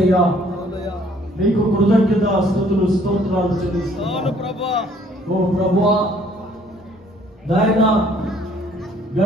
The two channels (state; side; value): normal; both; correlation 0.60